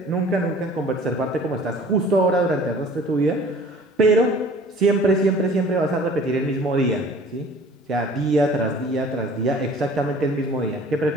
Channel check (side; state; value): both; normal; correlation 0.49